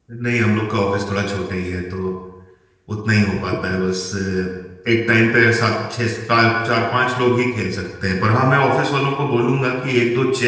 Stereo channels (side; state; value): both; identical; correlation 1.00